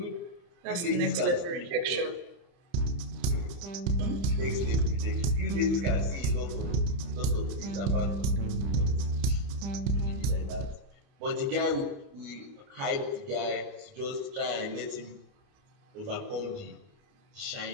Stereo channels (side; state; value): left; late; 30 ms